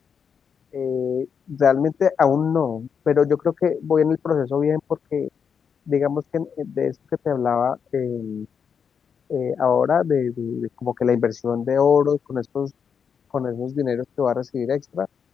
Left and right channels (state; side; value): quieter; right; 6.8 dB